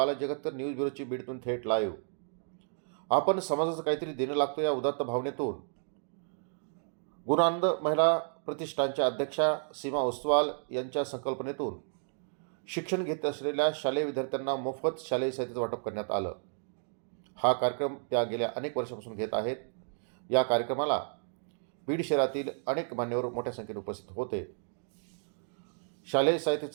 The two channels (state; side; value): silent; left; digital silence